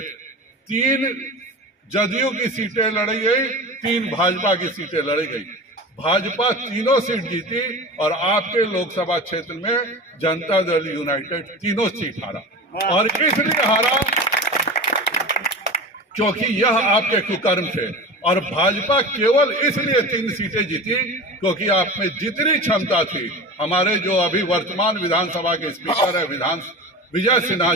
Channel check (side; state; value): both; normal; correlation 0.31